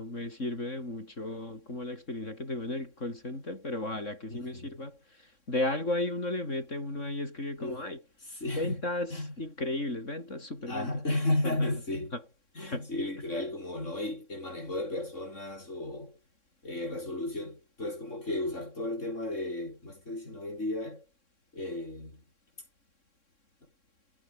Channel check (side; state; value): right; late; 3.6 ms